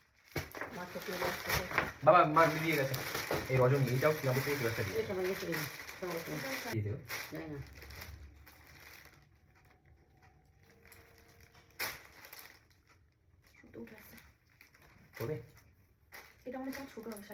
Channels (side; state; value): both; identical; correlation 1.00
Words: মাছ তো দিয়ে বাবা মা দিয়ে গেছে এই রজনী এইটাও কি আমাদের থেকে একটা দিয়ে এই সময় গেছে সময় এটাও শাড়ি দিয়ে দেবো জানি না সুতো উঠে আসছে তবে এটা মনে হচ্ছে ছোট হবে